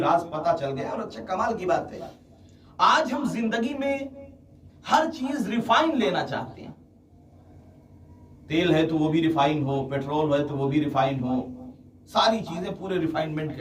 راز پتا چل گیا، اور اچھا کمال کی بات ہے، آج ہم زندگی میں ہر چیز ریفائن لینا چاہتے ہیں، تیل ہے تو وہ بھی ریفائن ہو، پیٹرول ہے تو وہ بھی ریفائن ہو، ساری چیزیں پورے ریفائنمنٹ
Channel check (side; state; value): both; identical; correlation 1.00